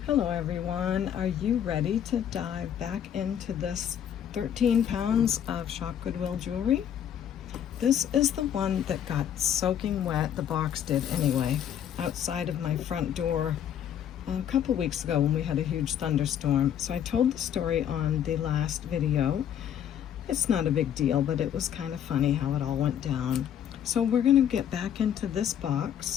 Hello everyone, are you ready to dive back into this 13 pounds of Shop Goodwill jewelry? This is the one that got soaking wet, the box did anyway, outside of my front door a couple weeks ago when we had a huge thunderstorm. So I told the story on the last video. It's not a big deal, but it was kind of funny how it all went down. So we're gonna get back into this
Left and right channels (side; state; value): right; quieter; 9.6 dB